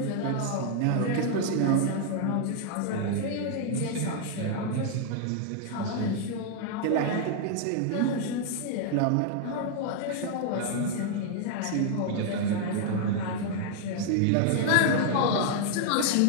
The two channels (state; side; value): different; both; correlation 0.00